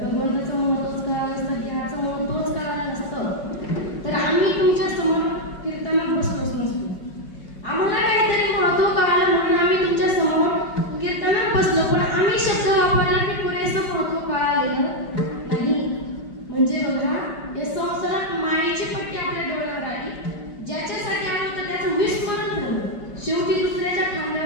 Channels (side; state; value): right; late; 4.9 ms